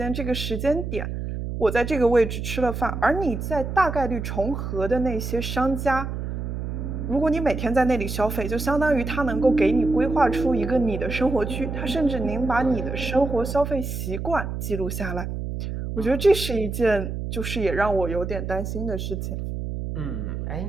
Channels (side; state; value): right; noise; hum, 5 dB below the sound